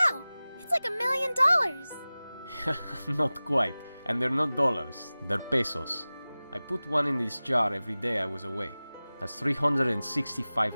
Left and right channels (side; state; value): both; inverted; correlation -0.98